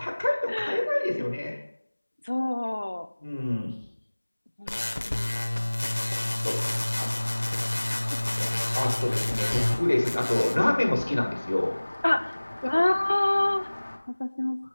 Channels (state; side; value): inverted; both; correlation -1.00